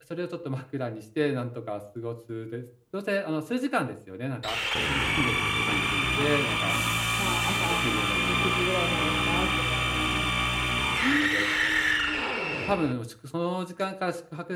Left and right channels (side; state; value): both; identical; correlation 1.00